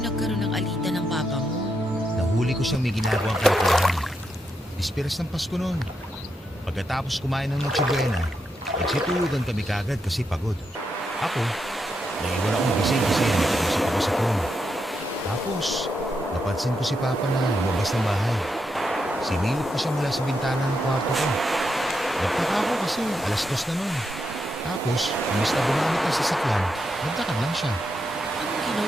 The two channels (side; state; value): both; normal; correlation 0.83